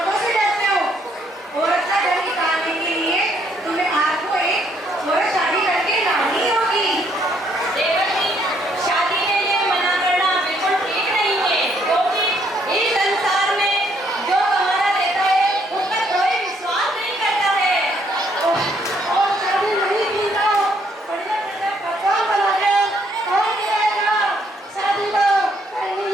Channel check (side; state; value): both; normal; correlation 0.69